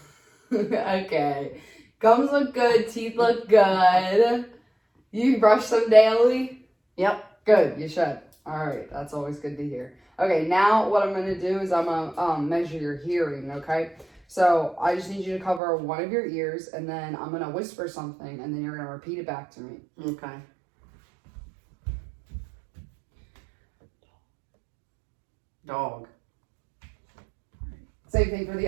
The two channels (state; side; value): drops out; left; at 15.6 s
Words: Okay. Gums look good. Teeth look good. You brush them daily? Yep. Good, you should. All right, that's always good to hear. Okay, now what I'm going to do is I'm going to measure your hearing, okay? So I just need you to cover one of your ears, and then I'm going to whisper something, and then you're going to repeat it back to me. Okay. Dog. Same thing for the